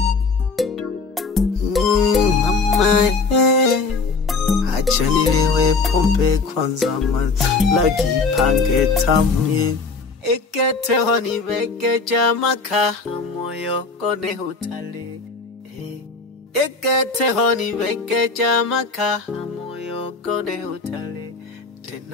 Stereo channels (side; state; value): right; quieter; 4.1 dB